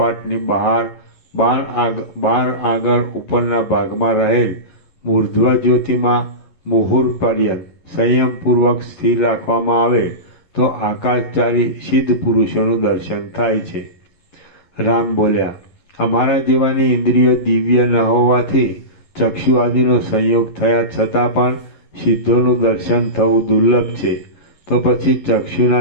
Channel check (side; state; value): right; late; 11 ms